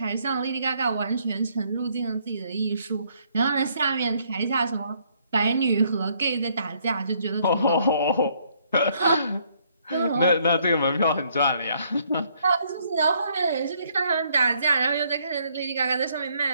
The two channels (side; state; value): both; inverted; correlation -0.68